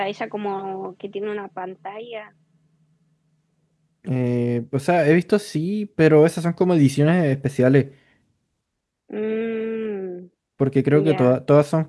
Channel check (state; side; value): identical; both; correlation 1.00